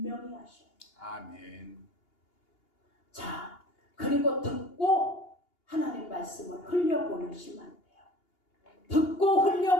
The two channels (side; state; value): right; late; 2.8 ms